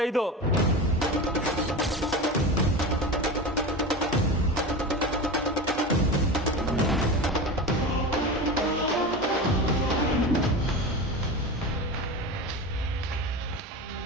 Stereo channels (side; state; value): both; normal; correlation 0.26